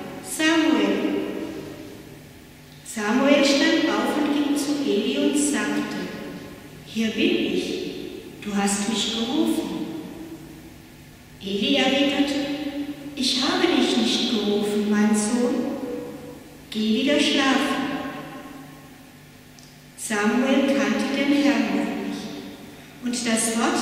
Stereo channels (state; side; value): identical; both; correlation 1.00